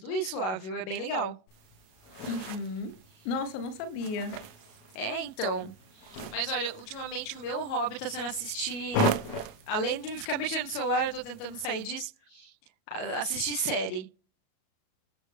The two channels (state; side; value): late; right; 37 ms